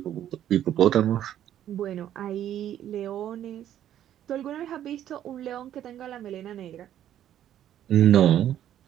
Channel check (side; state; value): left; quieter; 11.2 dB